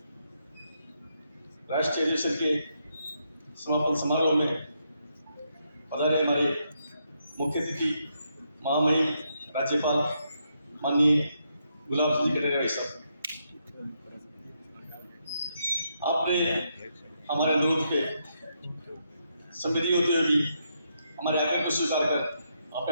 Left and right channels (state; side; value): inverted; both; correlation -0.79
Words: राष्ट्रीय अधिवेशन के समापन समारोह में पधारे हमारे मुख्य अतिथि महामहिम राज्यपाल माननीय गुलाब सिंह जी कटारिया भाई साहब, आपने हमारे अनुरोध पे संवेदी होते हुए भी हमारे आग्रह को स्वीकार कर आप